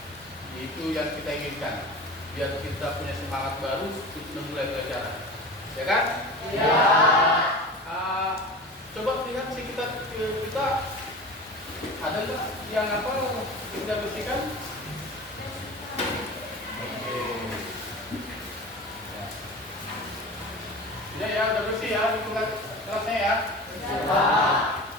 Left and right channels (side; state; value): both; normal; correlation 0.33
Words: itu yang kita inginkan, biar kita punya semangat baru untuk memulai pelajaran, ya kan? Iya. Coba lihat sih kita ada nggak yang apa kita bersihkan? Oke. Ya, udah bersih ya, hitungan kelasnya ya. Iya.